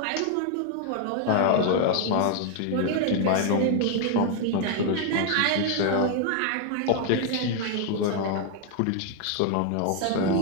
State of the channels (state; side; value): different; both; correlation 0.00